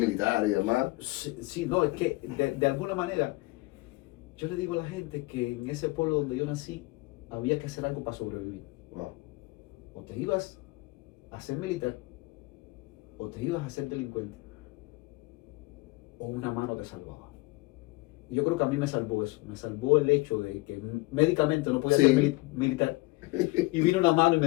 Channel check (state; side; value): quieter; right; 22.6 dB